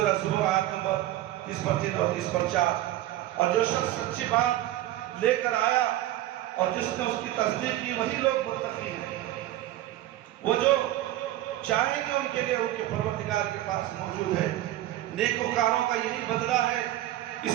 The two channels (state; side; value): quieter; left; 14.5 dB